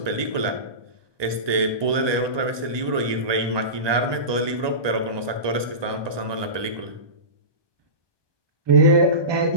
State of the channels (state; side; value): late; left; 1.2 ms